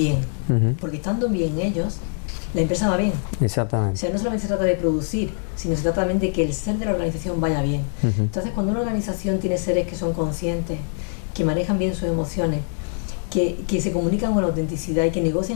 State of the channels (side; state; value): right; silent; 63 dB below the other